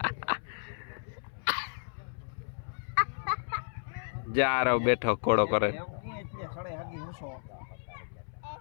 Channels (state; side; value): silent; right; 56 dB below the other